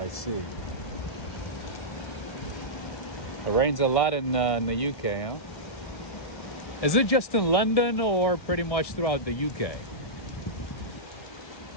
see. It rains a lot in the UK, huh? Is it just in London or pretty much throughout the UK?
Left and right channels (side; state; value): right; late; 1.7 ms